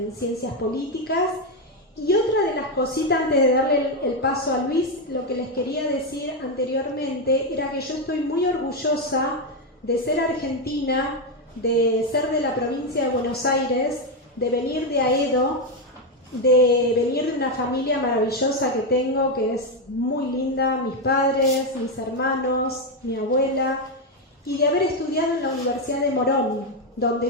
ciencias políticas. Y otra de las cositas, antes de darle el paso a Luis, lo que les quería decir anteriormente era que yo estoy muy orgullosa de ser argentina, de ser de la provincia de Buenos Aires, de venir de Aedo, de venir de una familia maravillosa que tengo, que es muy linda, mis padres, mis hermanos, mi abuela, y de haber estudiado en la Universidad de Morón,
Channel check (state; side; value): normal; both; correlation 0.06